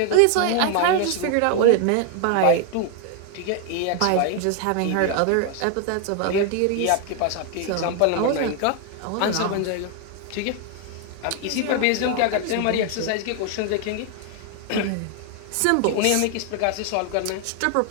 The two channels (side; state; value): both; different; correlation 0.00